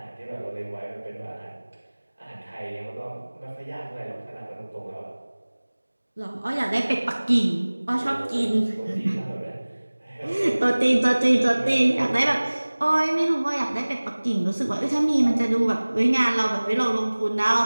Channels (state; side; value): inverted; both; correlation -1.00